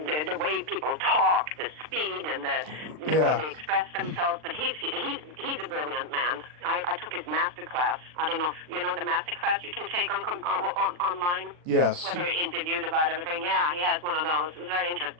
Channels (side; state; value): left; late; 40 ms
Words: way people talk, the speed, and the way they express themselves. But he's a brilliant man. I took his master class. I don't know if you know the master class you can take on online. Yes. Where they're interviewed about everything. Yeah, he has one of those. It was very